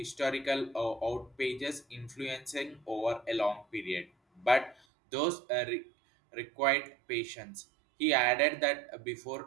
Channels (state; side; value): drops out; left; at 4.8 s